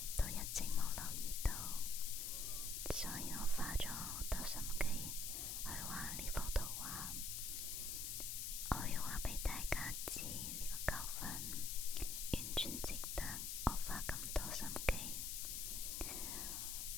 都一直冇留意到，所以我花咗好多心機去畫呢幅圖畫。我要話俾大家知，呢個教訓完全值得我花咁多心機。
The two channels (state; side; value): noise; left; hiss, 2 dB below the sound